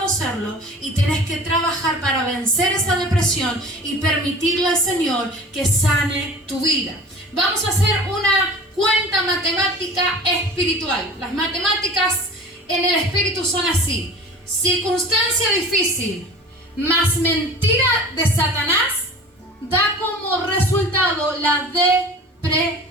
y tenés que trabajar para vencer esa depresión y permitirle al Señor que sane tu vida. Vamos a hacer una cuenta matemática espiritual. Las matemáticas en el espíritu son así: circunstancia difícil más mentira de Satanás da como resultado la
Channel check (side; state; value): both; normal; correlation 0.40